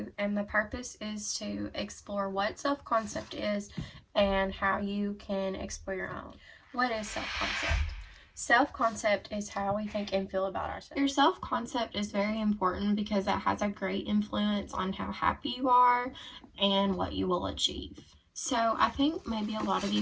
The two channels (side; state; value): both; identical; correlation 1.00